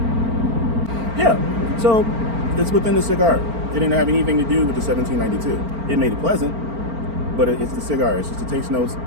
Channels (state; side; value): late; left; 4.4 ms